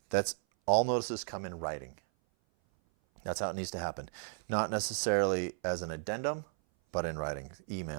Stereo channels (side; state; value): left; silent; 55 dB below the other